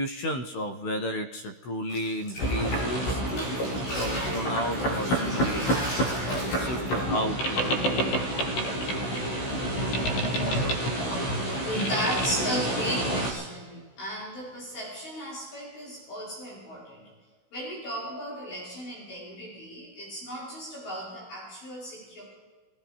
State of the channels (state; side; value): late; right; 16 ms